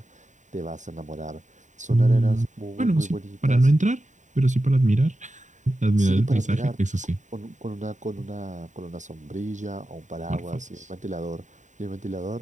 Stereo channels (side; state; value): left; late; 0.36 ms